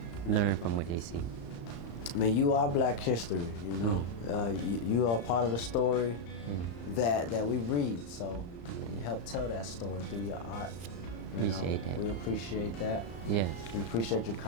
learn from what they see. I mean, you are Black history, you know. You are part of the story that we read. So you help tell that story through your art. Appreciate that. We appreciate that. Yes. We appreciate your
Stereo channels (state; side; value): late; right; 35 ms